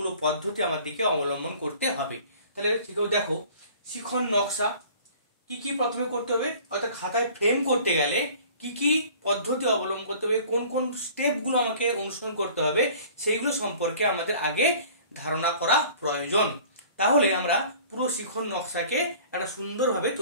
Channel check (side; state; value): both; inverted; correlation -0.48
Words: পদ্ধতি আমাদেরকে অবলম্বন করতে হবে। তাহলে দেখো, শিক্ষণ নকশা কি কি প্রথমে করতে হবে, অর্থাৎ খাতায় ফ্রেম করতে গেলে কি কি পদ্ধতি অবলম্বন করতে হবে, কোন কোন স্টেপগুলো আমাকে অনুসরণ করতে হবে, সেইগুলো সম্পর্কে আমাদের আগে ধারণা করা প্রয়োজন। তাহলে আমরা পুরো শিক্ষণ নকশাকে একটা সুন্দরভাবে